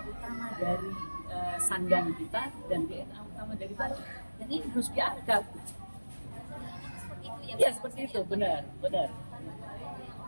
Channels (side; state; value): both; inverted; correlation -1.00